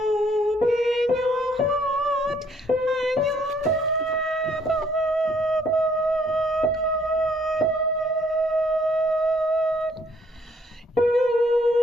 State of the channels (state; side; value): normal; both; correlation 0.65